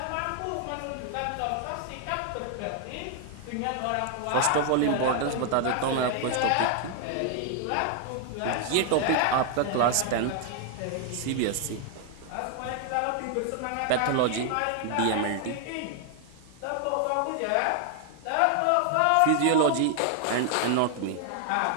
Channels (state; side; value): different; both; correlation 0.00